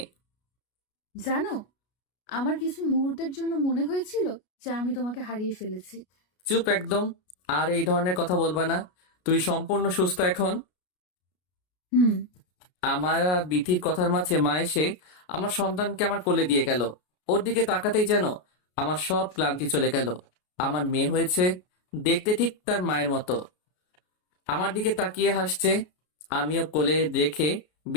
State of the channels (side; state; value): right; late; 33 ms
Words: জানো, আমার কিছু মুহূর্তের জন্য মনে হয়েছিল যে আমি তোমাকে হারিয়ে ফেলেছি। চুপ একদম। আর এই ধরনের কথা বলবা না। তুই সম্পূর্ণ সুস্থ এখন। হুম। আমার আর বিথির কথার মাঝে মা এসে আমার সন্তানকে আমার কোলে দিয়ে গেল। ওর দিকে তাকাতেই যেন আমার সব ক্লান্তি চলে গেল। আমার মেয়ে হয়েছে, দেখতে ঠিক তার মায়ের মতো। আমার দিকে তাকিয়ে হাসছে। আমিও কোলে রেখে